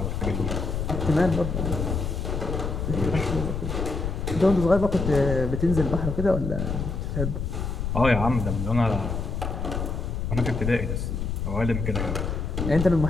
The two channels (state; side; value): noise; left; rumble, 2 dB below the sound